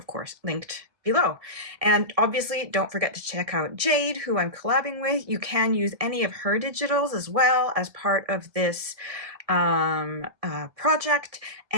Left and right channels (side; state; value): left; late; 1.7 ms